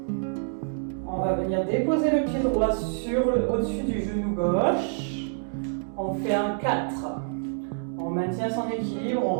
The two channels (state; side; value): silent; left; digital silence